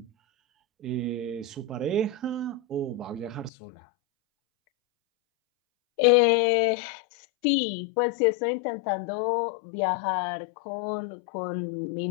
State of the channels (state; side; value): drops out; right; at 3.5 s